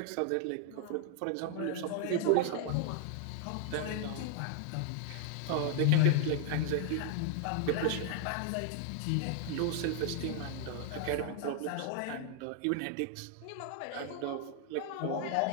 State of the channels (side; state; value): both; different; correlation 0.00